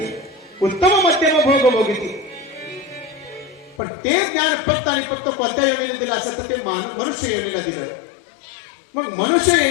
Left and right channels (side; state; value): right; drops out; at 3.8 s